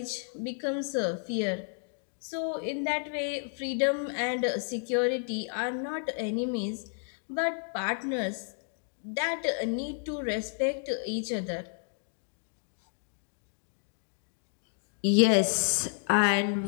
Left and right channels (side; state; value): right; silent; 57 dB below the other